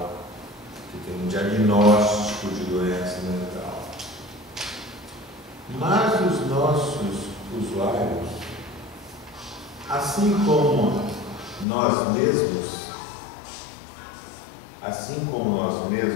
que têm um diagnóstico de doença mental. Mas os nossos usuários, assim como nós mesmos,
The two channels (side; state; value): right; drops out; at 11.7 s